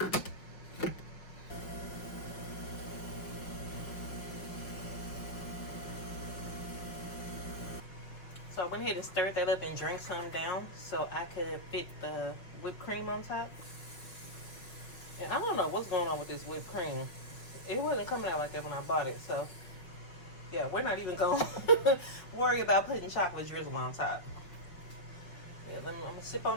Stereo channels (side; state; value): right; late; 5.5 ms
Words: So I went ahead and stirred that up and drank some down so I could fit the whipped cream on top. And I don't know what's going on with this whipped cream. It wasn't coming out like that when I bought it, so yeah, we're not even going to worry about putting chocolate drizzle on top. Yeah, I'm going to sip